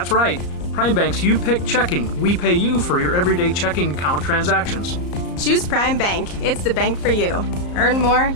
right, Prime Bank's You Pick checking. We pay you for your everyday checking account transactions. Choose Prime Bank. It's the bank for you. Earn more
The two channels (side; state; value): right; late; 34 ms